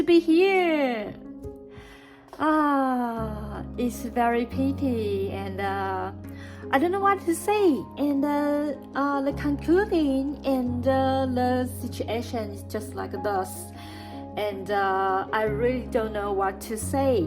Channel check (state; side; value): identical; both; correlation 1.00